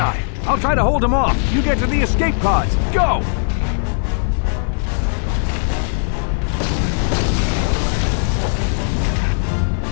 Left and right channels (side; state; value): right; silent; 67 dB below the other